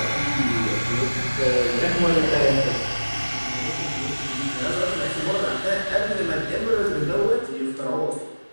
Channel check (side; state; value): both; inverted; correlation -1.00